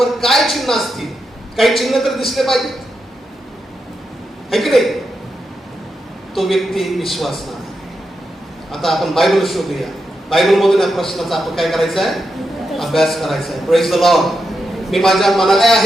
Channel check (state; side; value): normal; both; correlation 0.86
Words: काय चिन्ह असतील? काही चिन्ह तर दिसले पाहिजेत, है की नाही? तो व्यक्ती विश्वासणार आहे. आता आपण बायबल शोधूया. बायबल मधून या प्रश्नाचा आपण काय करायचा आहे? अभ्यास करायचा आहे. Praise the Lord. मी माझ्या मनाला